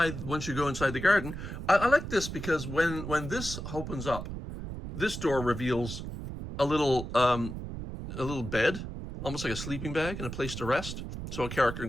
Once you go inside the garden, I like this because when this opens up, this door reveals a little bed, almost like a sleeping bag, and a place to rest. So a character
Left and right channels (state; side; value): noise; right; rumble, 7 dB below the sound